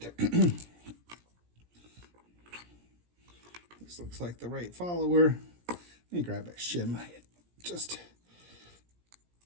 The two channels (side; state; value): left; late; 17 ms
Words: This looks like the right follower. Let me grab a shim. Just